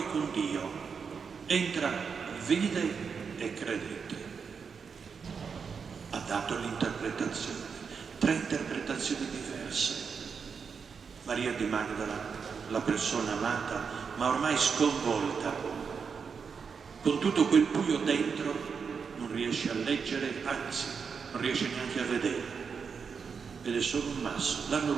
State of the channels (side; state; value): left; quieter; 6.0 dB